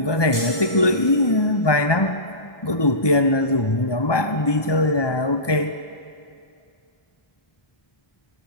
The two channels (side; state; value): right; late; 1.2 ms